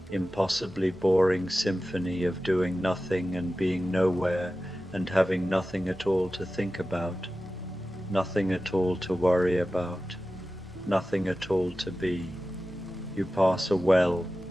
impossibly boring symphony of doing nothing and being nowhere and having nothing at all to think about, nothing at all to worry about, nothing at all to be. You pass a well.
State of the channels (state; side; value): normal; both; correlation 0.94